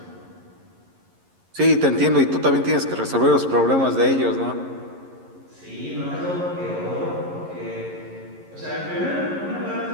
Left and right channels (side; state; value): left; late; 11 ms